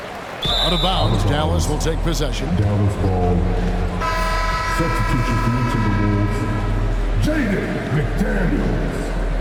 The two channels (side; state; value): both; identical; correlation 1.00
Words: Out of bounds, Dallas will take possession. Dallas ball. Substitution for the McDaniels.